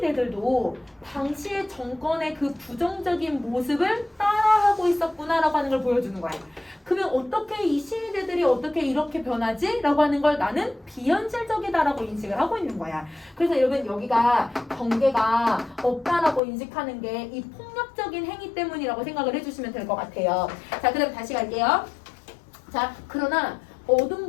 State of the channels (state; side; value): drops out; right; at 16.4 s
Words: 당시의 정권의 그 부정적인 모습을 따라하고 있었구나라고 하는 걸 보여주는 거야. 그러면 어떻게 이 시위대들이 어떻게 이렇게 변하지? 라고 하는 걸 나는 비현실적이다라고 인식을 하고 있는 거야. 그래서 여러분 여기가 경계가 없다라고 인식하는 게 이 폭력적인 행위 때문이라고 생각을 해주시면 될 것 같아요. 자, 그 다음 다시 갈게요. 자, 그러나